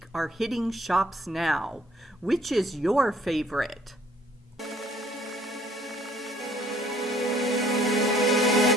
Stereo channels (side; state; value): both; normal; correlation 0.59